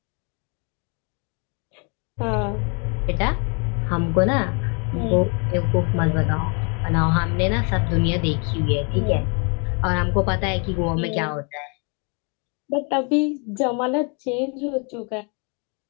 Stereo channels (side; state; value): right; quieter; 35.5 dB